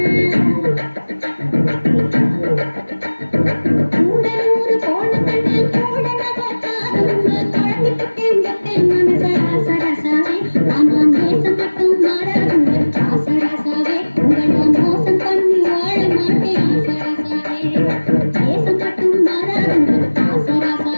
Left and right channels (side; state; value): both; inverted; correlation -1.00